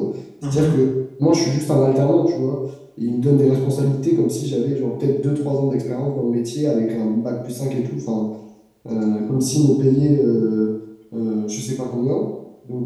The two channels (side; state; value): both; identical; correlation 1.00